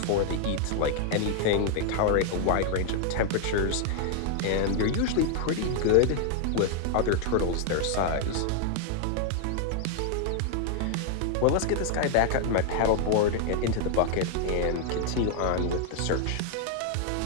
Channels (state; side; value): different; both; correlation 0.00